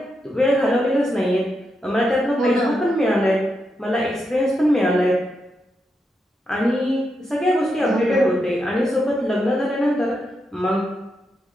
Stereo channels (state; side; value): normal; both; correlation 0.84